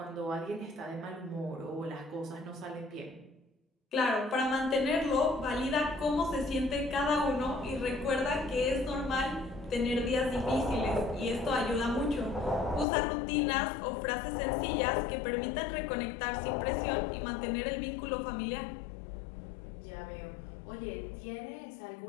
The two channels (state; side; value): drops out; right; at 12.9 s